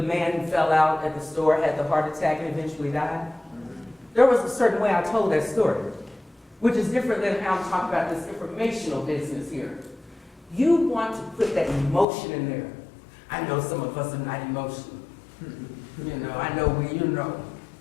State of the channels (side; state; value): right; drops out; at 12.1 s